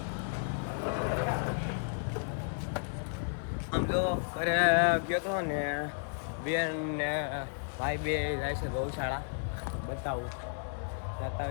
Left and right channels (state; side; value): silent; right; digital silence